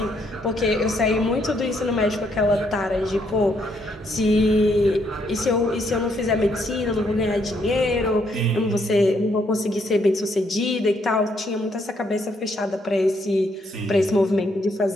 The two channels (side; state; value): both; normal; correlation 0.72